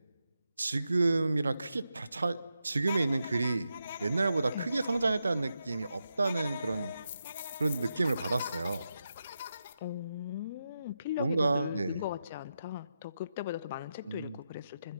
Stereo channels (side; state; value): both; inverted; correlation -0.87